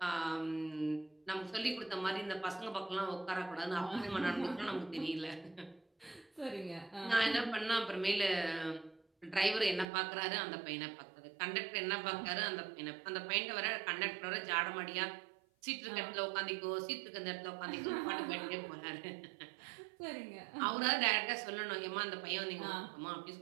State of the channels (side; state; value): left; drops out; at 9.9 s